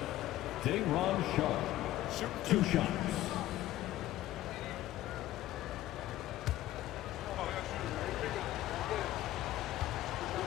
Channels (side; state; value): right; quieter; 14.8 dB